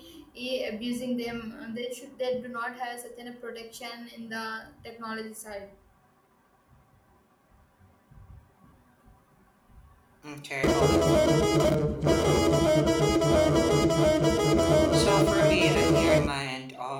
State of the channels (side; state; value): both; identical; correlation 1.00